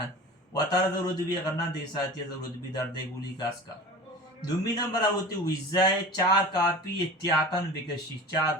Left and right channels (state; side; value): normal; both; correlation 0.37